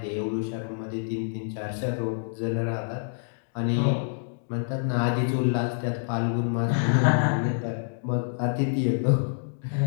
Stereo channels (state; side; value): silent; right; digital silence